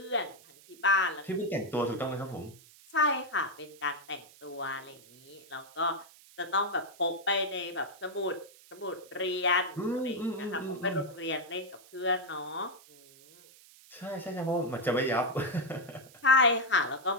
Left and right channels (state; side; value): noise; right; hiss, 23 dB below the sound